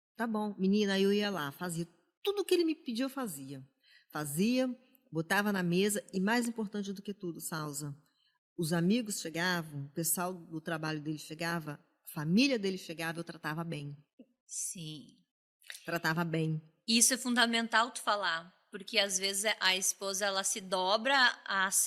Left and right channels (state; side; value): identical; both; correlation 1.00